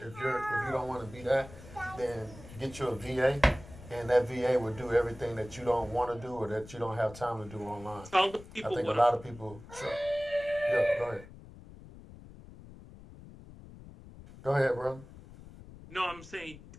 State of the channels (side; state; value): left; noise; rumble, 17 dB below the sound